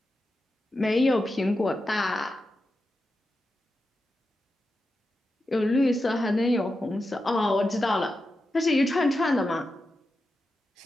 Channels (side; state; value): both; normal; correlation 0.90